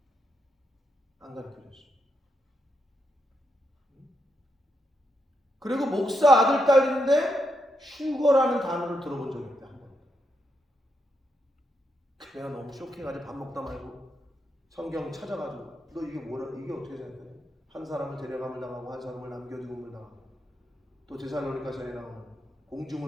안 가르쳐줬어. 그리고 목사 아들 딸인데 슈거라는 단어를 들어본 적이 있다. 한 번. 내가 너무 쇼킹하지. 밥 먹다 말고 성경 찾아가지고 너 이게 뭐라, 이게 어떻게 생각해? 한 사람을 데려감을 당하고 한 사람을 남겨두음을 당하고 또 데살로니가서에 나오는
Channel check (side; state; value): both; normal; correlation 0.81